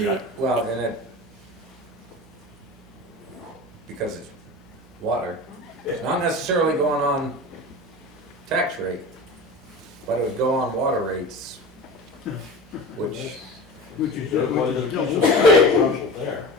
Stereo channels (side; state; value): both; normal; correlation 0.32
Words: Well, and it, because it's water, it's not necessarily going on tax rate, but it would go on water rates, which, Which is Well, there's double. some potential there.